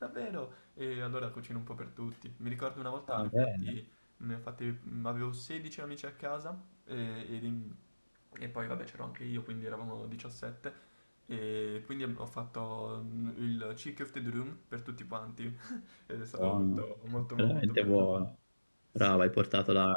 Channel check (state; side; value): inverted; both; correlation -1.00